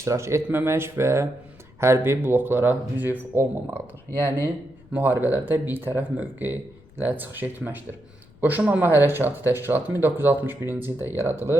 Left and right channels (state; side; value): noise; left; rumble, 26 dB below the sound